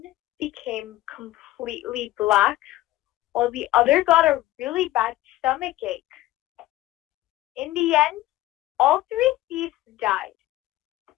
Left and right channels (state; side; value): quieter; right; 16.0 dB